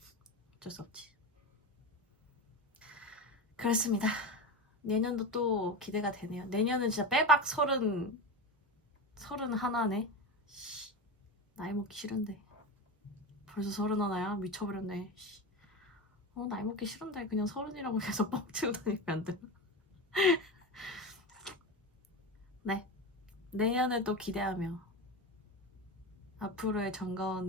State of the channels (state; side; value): normal; both; correlation 0.21